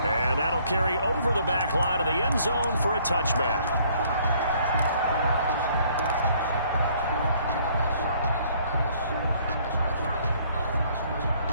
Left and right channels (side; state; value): both; inverted; correlation -0.62